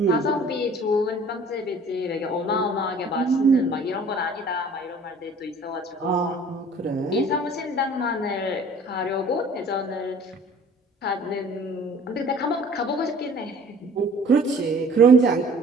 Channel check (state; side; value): normal; both; correlation 0.50